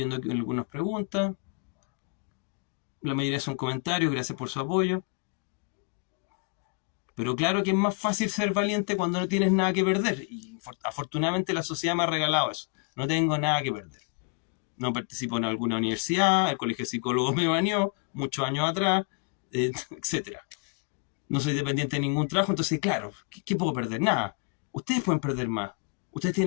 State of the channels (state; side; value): quieter; right; 36.6 dB